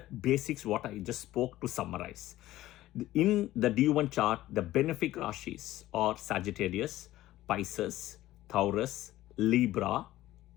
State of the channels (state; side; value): quieter; right; 15.5 dB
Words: basics what I just spoke to summarize. In the D1 chart, the benefic rashis are Sagittarius, Pisces, Taurus, Libra.